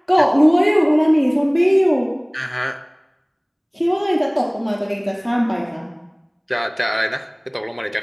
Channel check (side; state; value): both; identical; correlation 1.00